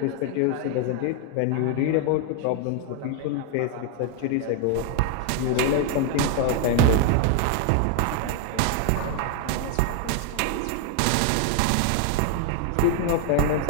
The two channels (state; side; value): different; both; correlation 0.01